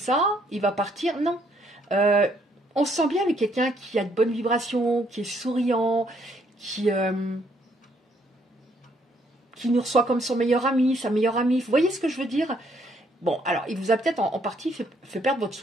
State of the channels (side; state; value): both; normal; correlation 0.69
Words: il va partir. Non. On se sent bien avec quelqu'un qui a de bonnes vibrations, qui est souriant, qui nous reçoit comme son meilleur ami, sa meilleure amie. Vous voyez ce que je veux dire? Bon, alors, il vous a peut-être en partie fait perdre votre